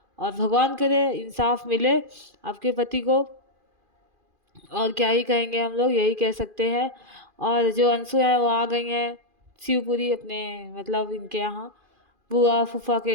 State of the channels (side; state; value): left; late; 2.5 ms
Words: और भगवान करे इंसाफ मिले आपके पति को। और क्या ही कहेंगे, हम लोग यही कह सकते हैं। और जो अंशु है वो आ गई हैं शिवपुरी अपने मतलब इनके यहाँ बुआ फूफा के